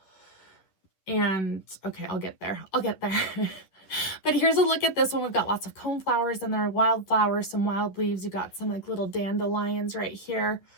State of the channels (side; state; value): right; late; 11 ms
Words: And okay, I'll get there. But here's a look at this one. We've got lots of cone flowers in there, wildflowers, some wild leaves. You got some like little dandelions right here.